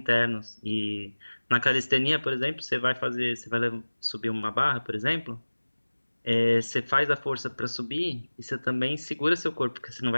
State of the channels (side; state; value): both; inverted; correlation -1.00